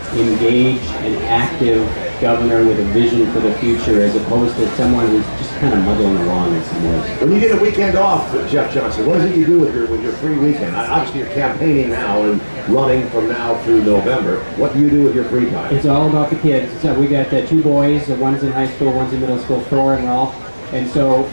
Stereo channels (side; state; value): both; inverted; correlation -1.00